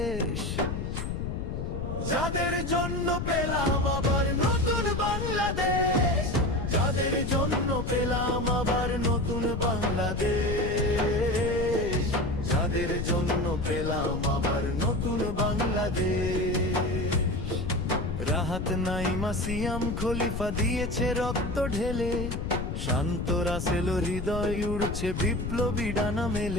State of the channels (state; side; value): noise; left; rumble, 3 dB below the sound